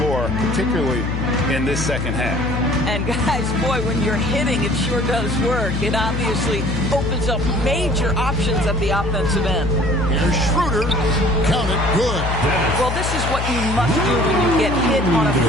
particularly in this second half. And guys, boy, when you're hitting, it sure does work. It obviously opens up major options at the offensive end. Here's Schroeder. Count it. Good. Well, this is what you must do when you get hit on a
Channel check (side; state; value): left; noise; hum, 2 dB below the sound